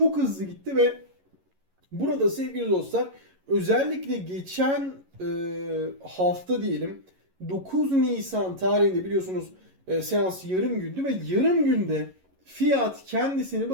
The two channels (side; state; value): left; late; 11 ms